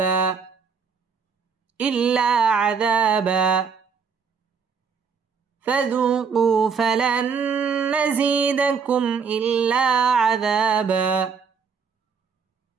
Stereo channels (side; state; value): left; quieter; 6.0 dB